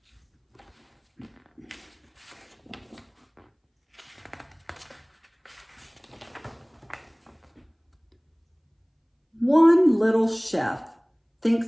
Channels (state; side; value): identical; both; correlation 1.00